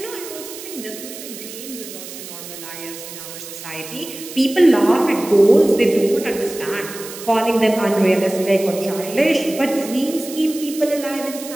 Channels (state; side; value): noise; right; hiss, 12 dB below the sound